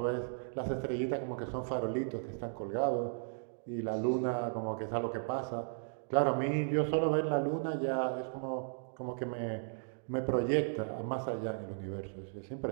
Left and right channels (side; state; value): left; silent; digital silence